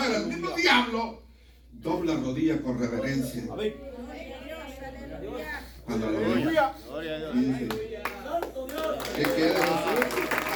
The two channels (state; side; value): identical; both; correlation 1.00